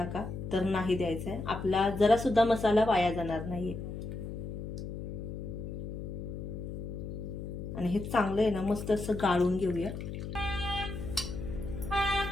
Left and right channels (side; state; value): left; noise; hum, 7 dB below the sound